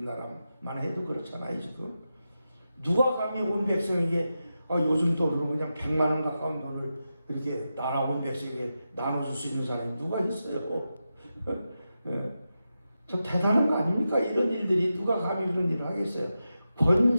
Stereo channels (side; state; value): both; inverted; correlation -0.90